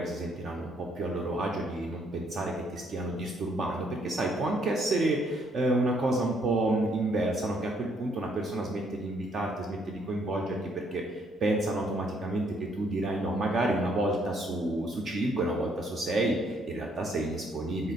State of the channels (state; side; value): normal; both; correlation 0.69